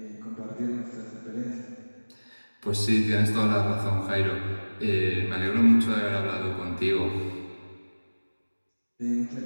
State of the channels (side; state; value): both; inverted; correlation -1.00